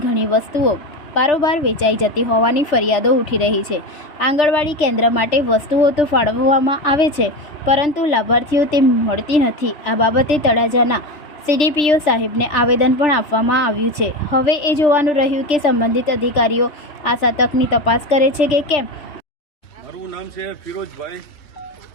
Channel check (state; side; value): late; right; 3.4 ms